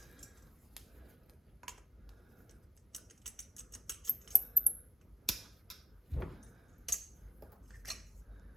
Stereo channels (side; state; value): both; normal; correlation 0.84